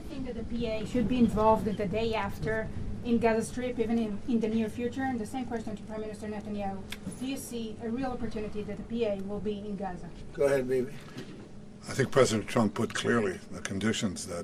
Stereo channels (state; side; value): identical; both; correlation 1.00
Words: think that the PA should be involved the day after in Gaza Strip, even in the near future? And the same question to Prime Minister Netanyahu. Do you see a real opportunity that the PA will be in Gaza? Go ahead, baby. I think President Trump put clearly the conditions